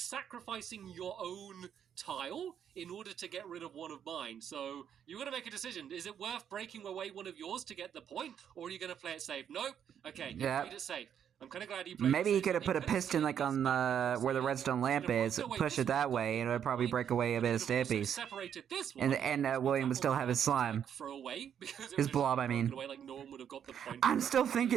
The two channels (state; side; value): quieter; left; 8.7 dB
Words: your own tile in order to get rid of one of mine. So you're going to make a decision. Is it worth breaking away one of yours to get the point, or are you going to play it safe? Nope. Okay, you played it safe. I'm kind of glad you played. Maybe he could have put a piston like on the where the redstone lamp is, push it that way, and it would probably break away a bit of Stampy's. Separated this one, and William would still have his slime. Throw away because his blob, I mean. Away, like no one would have got the point. I'm still